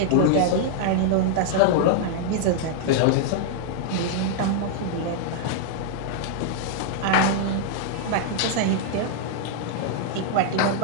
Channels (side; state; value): both; different; correlation -0.01